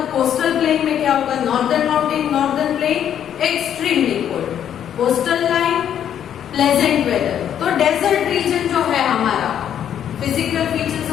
coastal plain में क्या होगा? Northern mountain, northern plain extremely cold, coastal line pleasant weather. तो डेजर्ट रीजन जो है हमारा, फिजिकल फीचर्स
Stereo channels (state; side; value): quieter; right; 9.6 dB